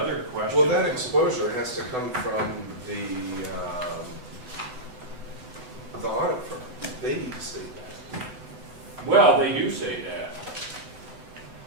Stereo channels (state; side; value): late; left; 8.0 ms